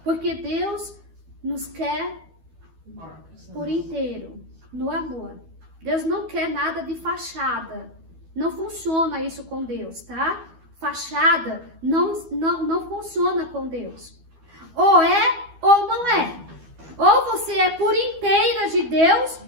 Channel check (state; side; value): late; left; 12 ms